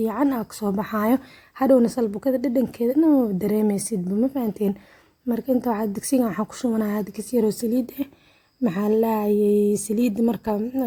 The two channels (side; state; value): both; identical; correlation 1.00